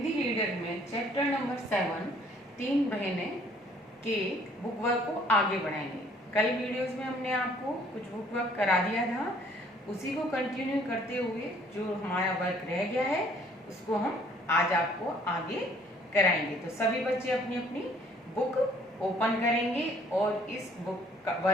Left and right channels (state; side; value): normal; both; correlation 0.60